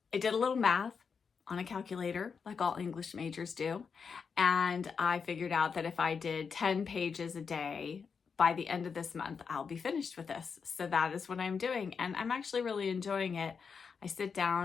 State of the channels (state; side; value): quieter; right; 5.8 dB